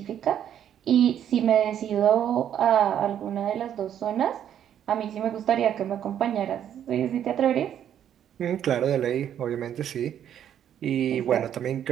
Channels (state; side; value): quieter; left; 9.9 dB